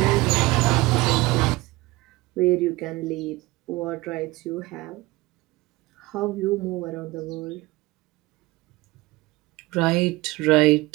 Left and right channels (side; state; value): left; quieter; 21.1 dB